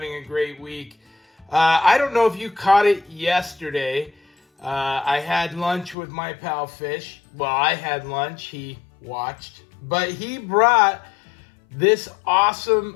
a great week. I don't know if you caught it yesterday. I had lunch with my pal Fish. Well, I had lunch. He watched. But he brought this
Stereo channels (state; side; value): drops out; right; at 6.0 s